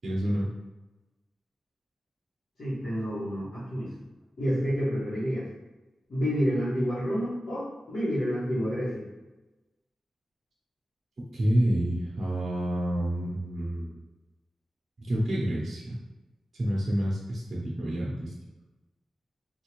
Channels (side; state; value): both; normal; correlation 0.94